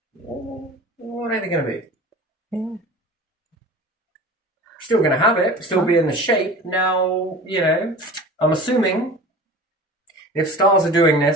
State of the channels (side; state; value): both; normal; correlation 0.38